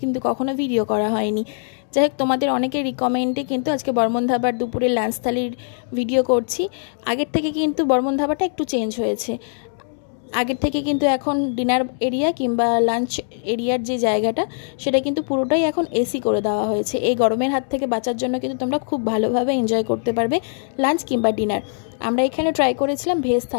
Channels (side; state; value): right; silent; 65 dB below the other